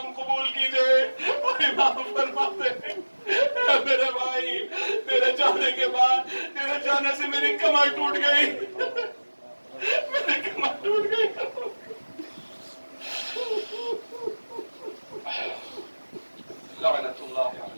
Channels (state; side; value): inverted; both; correlation -1.00